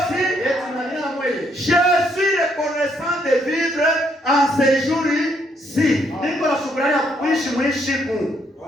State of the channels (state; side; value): normal; both; correlation 0.72